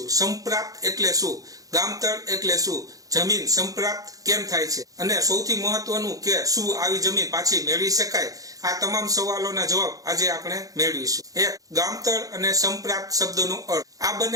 સંપ્રાપ્ત એટલે શું, ગામતળ એટલે શું, જમીન સંપ્રાપ્ત કેમ થાય છે, અને સૌથી મહત્વનું કે શું આવી જમીન પાછી મેળવી શકાય, આ તમામ સવાલોના જવાબ આજે આપણે મેળવીશું. એક, ગામતળ અને સંપ્રાપ્ત શબ્દોનો અર્થ. આ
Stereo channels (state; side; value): late; left; 0.17 ms